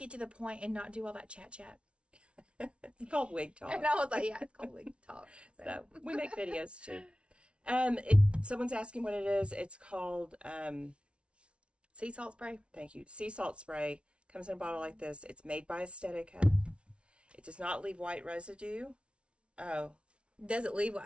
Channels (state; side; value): late; left; 0.059 ms